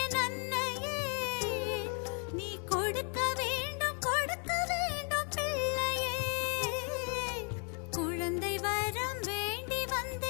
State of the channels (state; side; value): quieter; right; 39.5 dB